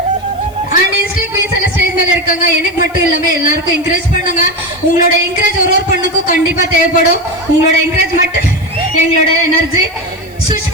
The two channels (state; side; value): noise; left; hiss, 27 dB below the sound